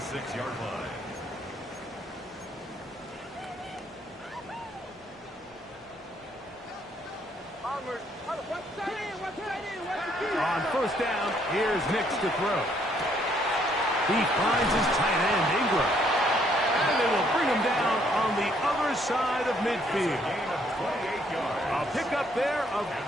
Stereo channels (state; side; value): normal; both; correlation 0.68